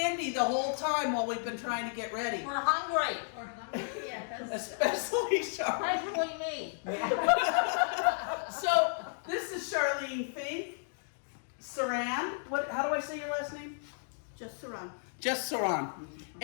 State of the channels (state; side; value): silent; right; digital silence